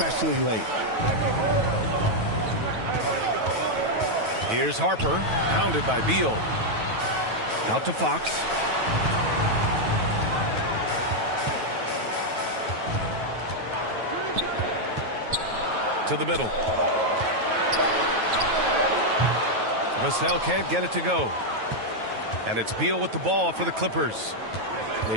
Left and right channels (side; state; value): left; late; 9.2 ms